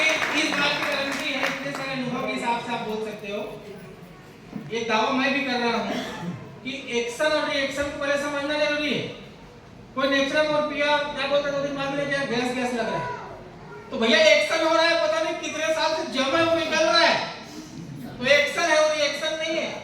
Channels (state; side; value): identical; both; correlation 1.00